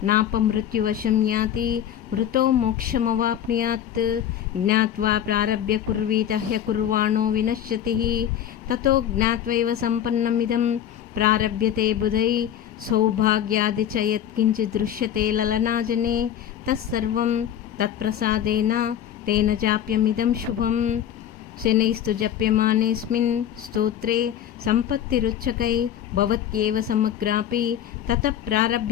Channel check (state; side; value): quieter; right; 10.2 dB